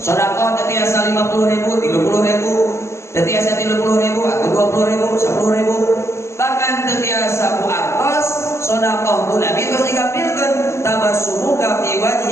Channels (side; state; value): right; late; 0.13 ms